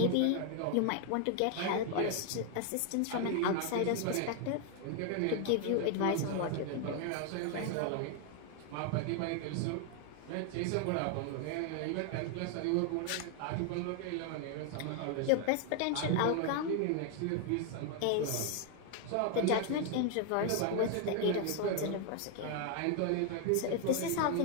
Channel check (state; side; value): different; both; correlation 0.00